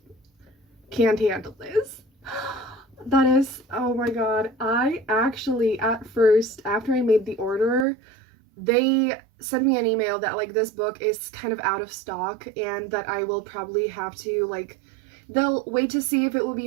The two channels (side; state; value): left; drops out; at 7.9 s